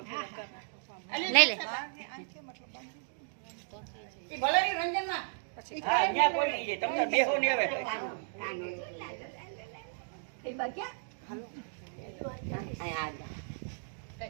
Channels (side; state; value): left; silent; digital silence